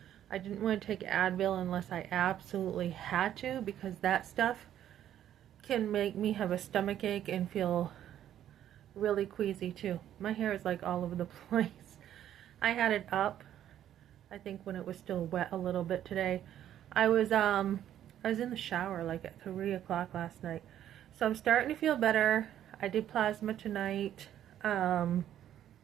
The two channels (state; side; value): quieter; left; 11.1 dB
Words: I didn't want to take Advil unless I absolutely had to because that stuff can make me have a stomach ache and feel really queasy too. My hair is like all over the place. I had it up, I think when it was still wet a little bit today. I was in the shower like at 3 o'clock last night. So I'm starting to feel better. I did plasma tonight. Um,